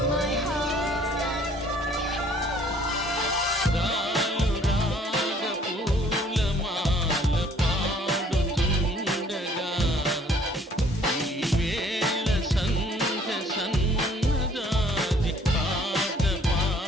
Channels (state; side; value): normal; both; correlation 0.58